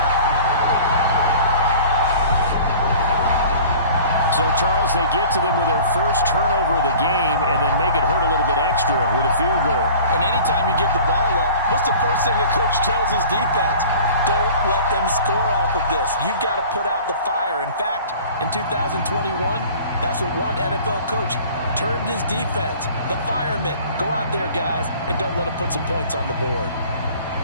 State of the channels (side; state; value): both; inverted; correlation -0.45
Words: So, Charles, they get to them with their first turnover of the game and then make it hurt a little bit extra with a field goal. And anytime you give the ball up, what's the first thing a coach tells his defense? Don't let them score off of this. You've got to put out the fire. In fact, in 2021, that's what one NFL coach termed his defense. The firemen. Go out there, guys, and don't let them put some points on the board.